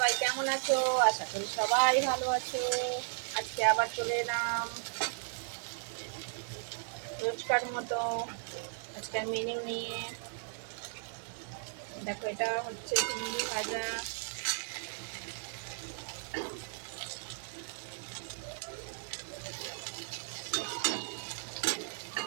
কেমন আছো? আশা করি সবাই ভালো আছো। আজকে আবার চলে এলাম রোজকার মতো আজকের মেনু নিয়ে। দেখো, এটা হচ্ছে চিংড়ি ভাজা,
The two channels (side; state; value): left; silent; digital silence